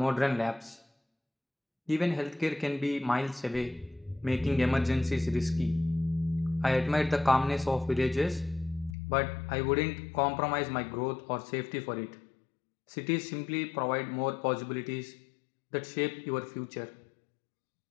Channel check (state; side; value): drops out; right; at 9.0 s